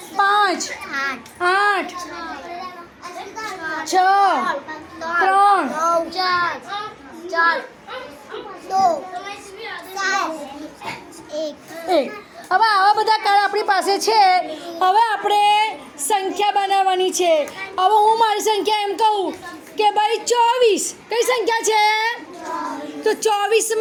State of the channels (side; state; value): both; identical; correlation 1.00